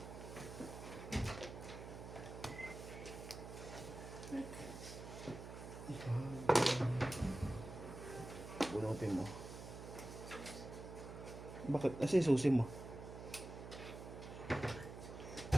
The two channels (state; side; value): noise; right; hum, 10 dB below the sound